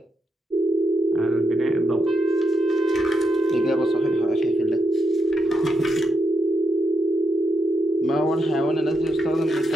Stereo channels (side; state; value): both; normal; correlation 0.81